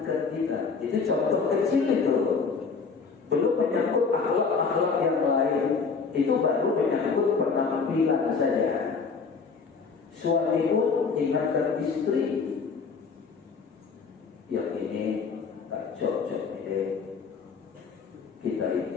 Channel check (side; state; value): right; quieter; 5.2 dB